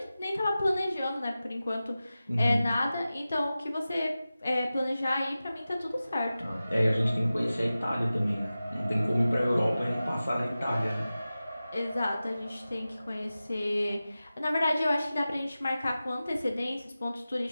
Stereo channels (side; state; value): both; inverted; correlation -0.95